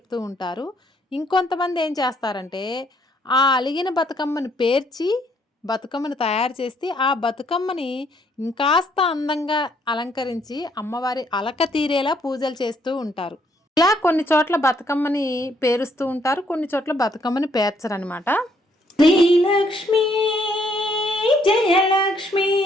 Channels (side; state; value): both; normal; correlation 0.69